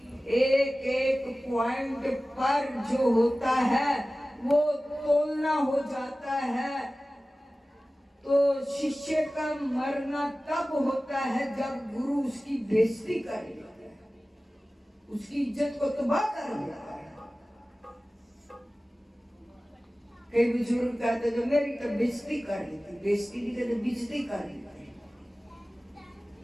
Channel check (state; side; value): normal; both; correlation 0.97